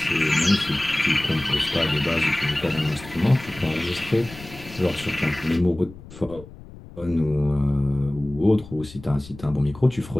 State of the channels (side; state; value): left; noise; rumble, 17 dB below the sound